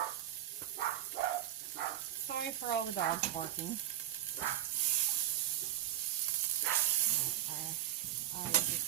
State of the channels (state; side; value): quieter; left; 12.4 dB